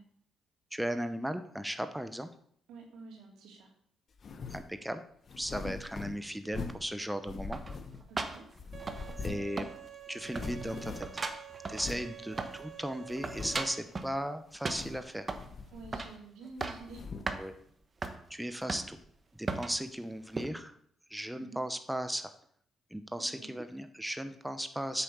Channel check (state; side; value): normal; both; correlation 0.92